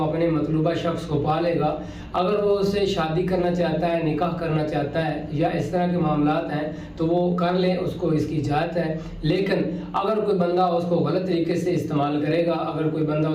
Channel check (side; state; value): both; identical; correlation 1.00